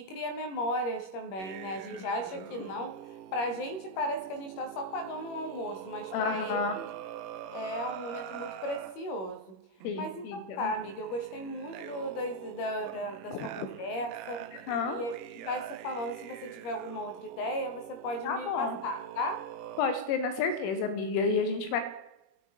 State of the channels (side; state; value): right; late; 21 ms